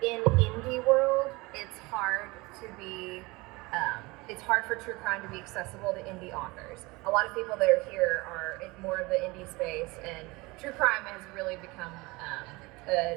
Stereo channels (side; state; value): left; quieter; 23.6 dB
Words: in indie world, it's hard for true crime to be accessible to indie authors. A lot of people that are here are in more of the indie space, and true crime has really become a